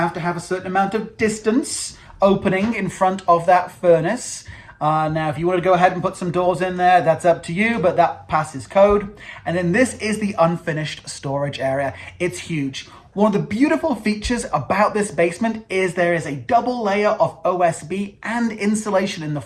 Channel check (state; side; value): identical; both; correlation 1.00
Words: to have a certain amount of distance opening in front of that furnace. Now, if you want to go ahead and put some doors in there, that's up to you, but that passes code. And then this is the unfinished storage area. It's huge. One of the beautiful features about this basement is there is a double layer of OSB and insulation in the